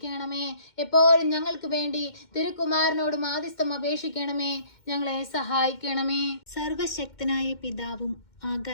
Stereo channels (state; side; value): late; right; 2.1 ms